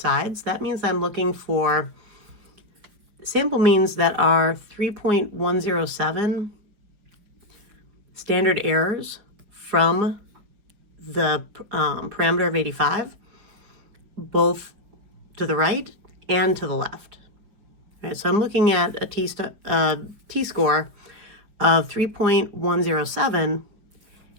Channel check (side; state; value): left; late; 5.1 ms